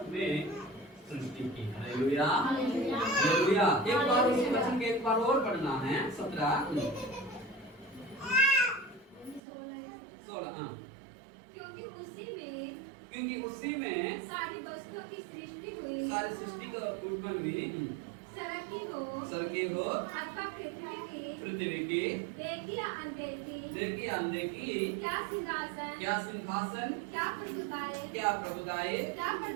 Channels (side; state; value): left; drops out; at 9.4 s